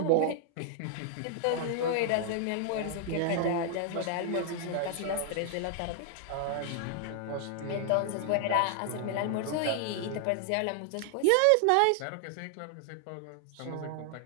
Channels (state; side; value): different; both; correlation 0.00